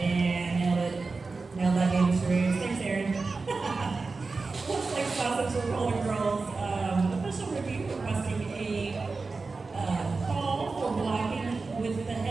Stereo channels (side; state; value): left; quieter; 4.0 dB